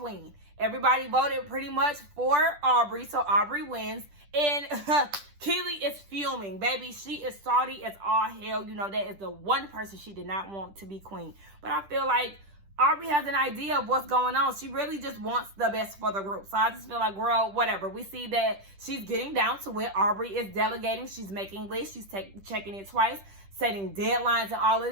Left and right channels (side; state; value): left; late; 10 ms